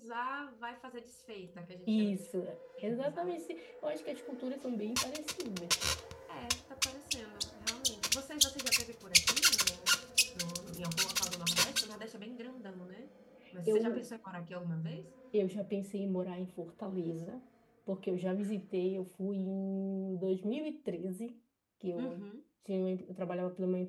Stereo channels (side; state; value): both; identical; correlation 1.00